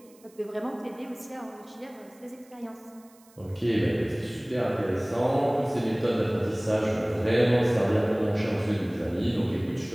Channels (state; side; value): noise; right; hiss, 28 dB below the sound